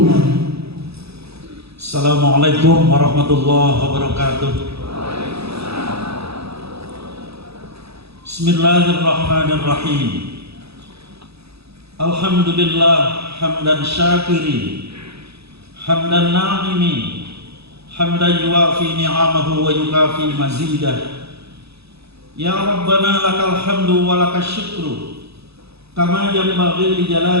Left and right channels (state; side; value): late; left; 0.78 ms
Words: Assalamualaikum warahmatullahi wabarakatuh. Bismillahirrahmanirrahim. Alhamdulillah hamdan syakirin, hamdan na'imin, hamdan yuwafi ni'amahu wa yukafi mazidah. Ya Rabbana lakal hamdu wa lakal syukru kama yanbaghi li